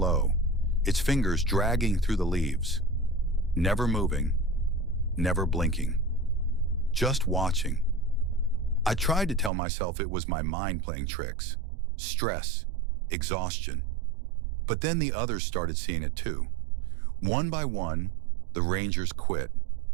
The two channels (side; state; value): left; drops out; at 9.5 s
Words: its fingers dragging through the leaves. Never moving, never blinking. Just watching. I tried to tell myself it was my mind playing tricks. Stress, exhaustion. But then the others started seeing it too. One by one, the rangers quit.